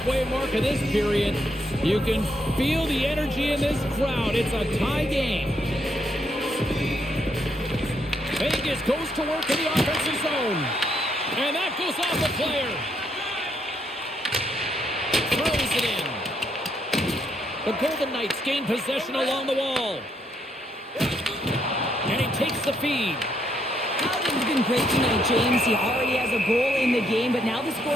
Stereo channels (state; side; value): normal; both; correlation 0.75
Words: mark of this period, you can feel the energy in this crowd. It's a tie game. Vegas goes to work in the offensive zone. And that goes off the player. Throws it in. The Golden Knights gain possession along the wall. And he takes the feed. Howden's been great tonight, James. He already has a goal in the game, but now the